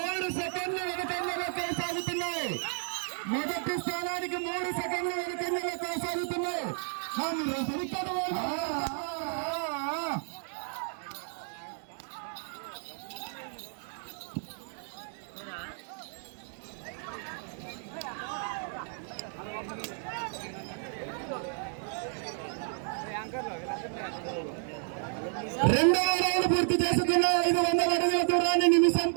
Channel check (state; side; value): silent; left; 56 dB below the other